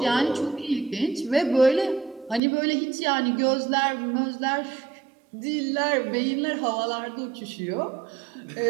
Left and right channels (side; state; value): left; drops out; at 2.4 s